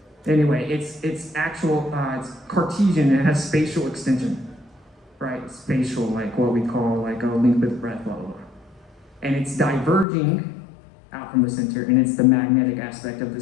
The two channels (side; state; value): right; drops out; at 10.1 s